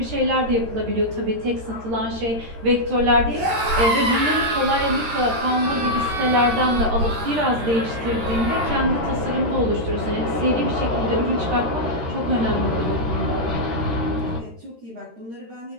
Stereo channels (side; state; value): left; late; 13 ms